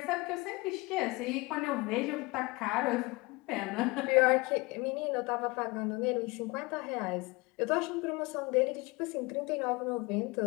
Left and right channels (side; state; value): right; quieter; 24.8 dB